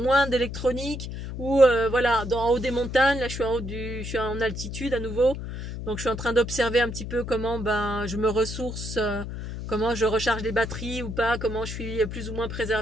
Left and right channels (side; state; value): left; noise; hum, 7 dB below the sound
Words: d'électronique, ou voilà, en haut des montagnes. Là je suis en altitude à nouveau, donc je suis en train d'observer un petit peu comment ben je me ressource, comment je recharge les batteries ou pas, comment je suis plus ou moins